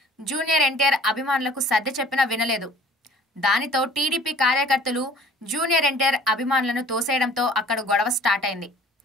జూనియర్ ఎన్టీఆర్ అభిమానులకు సర్ది చెప్పినా వినలేదు. దానితో టీడీపీ కార్యకర్తలు జూనియర్ ఎన్టీఆర్ అభిమానులను తోసేయడంతో అక్కడ గొడవ స్టార్ట్ అయింది.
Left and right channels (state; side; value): normal; both; correlation 0.50